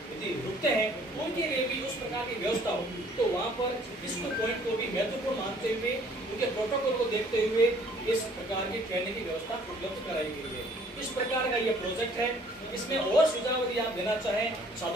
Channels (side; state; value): both; normal; correlation 0.58